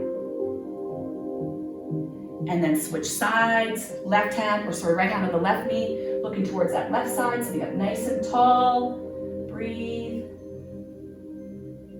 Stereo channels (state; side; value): identical; both; correlation 1.00